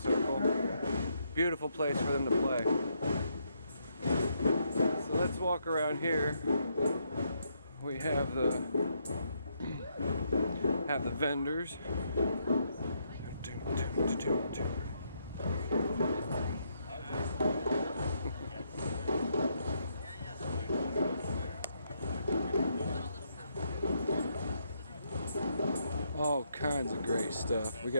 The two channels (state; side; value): inverted; both; correlation -0.76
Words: Beautiful place for them to play. So let's walk around here. We have the vendors. All kinds of great stuff. We